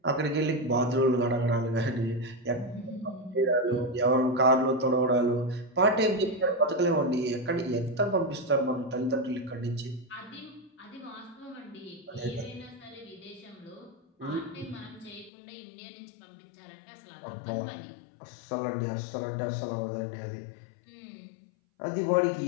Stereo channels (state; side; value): drops out; right; at 15.3 s